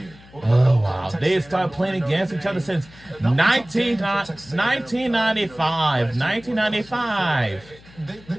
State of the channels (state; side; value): noise; left; hum, 23 dB below the sound